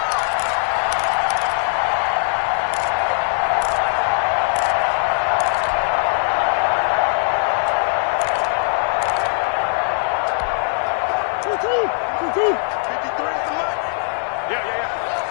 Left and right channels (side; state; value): right; silent; 64 dB below the other